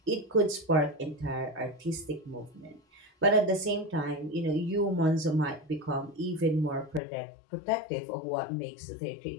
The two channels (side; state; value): right; drops out; at 7.0 s